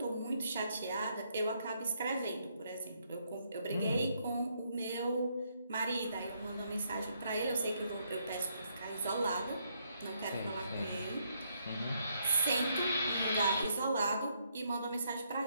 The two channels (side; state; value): both; inverted; correlation -0.74